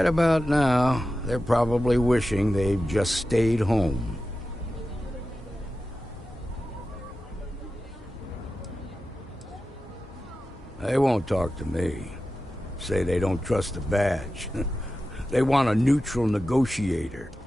about now, they're probably wishing they'd just stayed home. They won't talk to me. Say they don't trust the badge. They want a neutral negotiator.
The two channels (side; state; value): both; normal; correlation 0.92